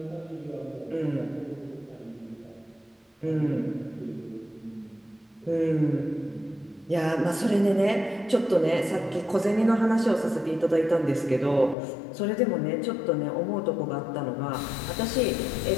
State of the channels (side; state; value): right; drops out; at 11.8 s